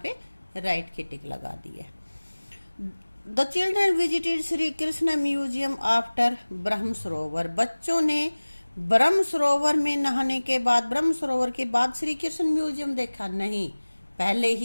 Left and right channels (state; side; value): inverted; both; correlation -1.00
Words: पे राइट की टिक लगा दी है। The children visited Shri Krishna museum after ब्रह्म सरोवर। बच्चों ने ब्रह्म सरोवर में नहाने के बाद, ब्रह्म सरोवर के बाद श्री कृष्ण म्यूजियम देखा नहीं, पहले